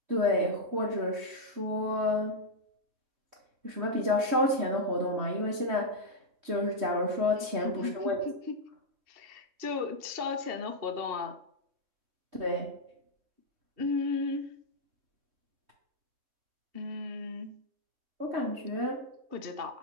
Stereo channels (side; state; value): left; late; 3.2 ms